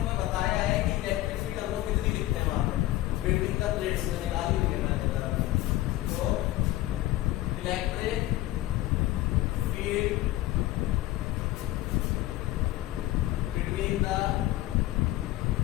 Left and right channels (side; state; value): right; quieter; 16.2 dB